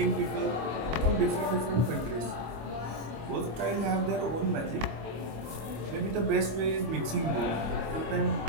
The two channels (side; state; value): left; late; 25 ms